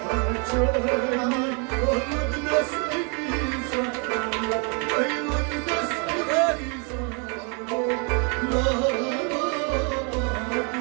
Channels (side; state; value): left; quieter; 36.0 dB